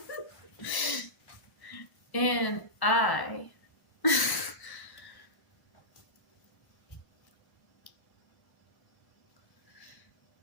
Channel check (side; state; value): right; late; 1.0 ms